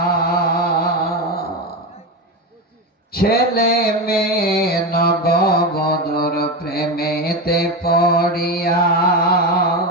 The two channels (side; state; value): both; normal; correlation 0.16